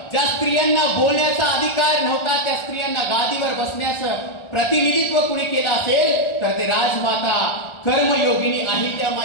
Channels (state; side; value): late; right; 1.4 ms